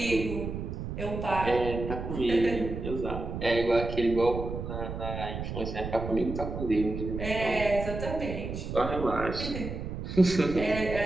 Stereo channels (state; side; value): noise; right; rumble, 6 dB below the sound